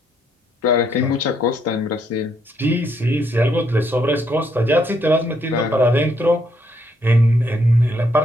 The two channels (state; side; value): normal; both; correlation 0.73